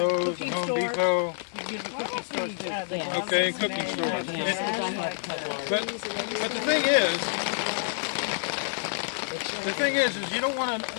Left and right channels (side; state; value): right; silent; 60 dB below the other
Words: and Home Depot. You can get the cookie stores too. Yeah. Okay, cooking stores. But the thing is you don't want